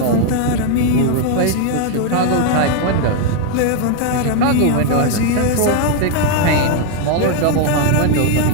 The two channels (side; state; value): both; different; correlation 0.00